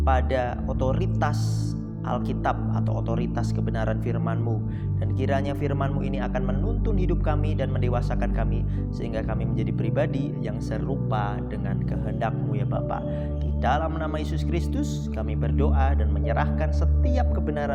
pada otoritas Alkitab atau otoritas kebenaran firman-Mu. Dan kiranya firman-Mu ini akan menuntun hidup kami dan mendewasakan kami, sehingga kami menjadi pribadi yang serupa dengan kehendak-Mu ya Bapa. Di dalam nama Yesus Kristus kami berdoa dan menyerahkan setiap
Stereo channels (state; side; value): identical; both; correlation 1.00